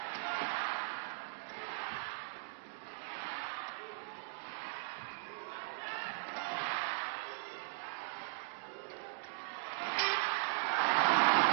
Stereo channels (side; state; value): left; silent; digital silence